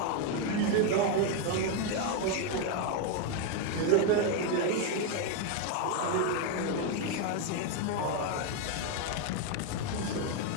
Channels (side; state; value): both; different; correlation 0.01